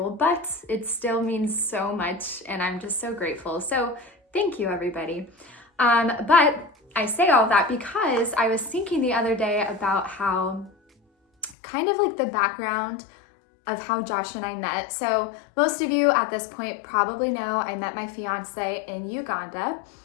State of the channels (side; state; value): right; drops out; at 11.6 s